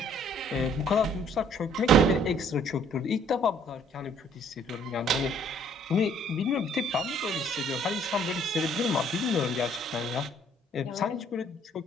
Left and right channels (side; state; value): both; normal; correlation 0.60